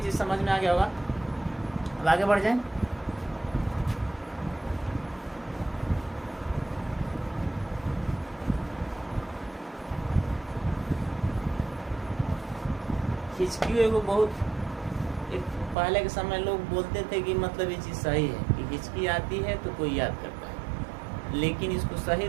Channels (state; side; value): drops out; left; at 15.8 s